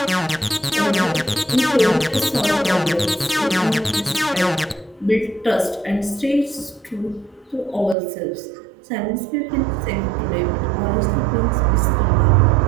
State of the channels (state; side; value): drops out; left; at 8.0 s